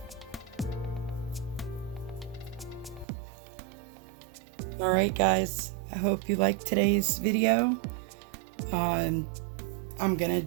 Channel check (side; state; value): left; drops out; at 3.1 s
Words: Alright guys, I hope you liked today's video. I'm gonna